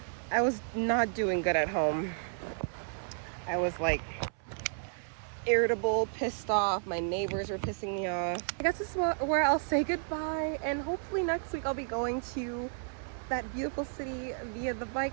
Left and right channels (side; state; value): left; silent; 56 dB below the other